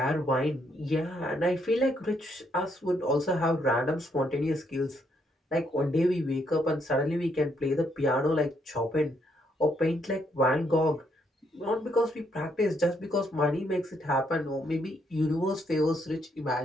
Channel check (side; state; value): both; normal; correlation 0.74